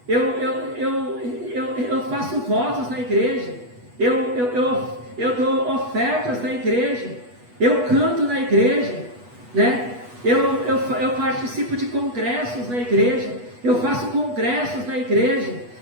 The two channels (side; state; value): left; late; 8.2 ms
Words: Eu faço votos na igreja. Eu dou ofertas na igreja. Eu canto na igreja, né? Eu participo de congressos na igreja. Eu faço congressos na igreja.